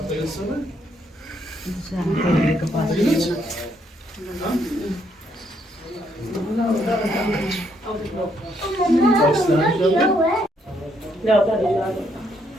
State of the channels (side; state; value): both; normal; correlation 0.73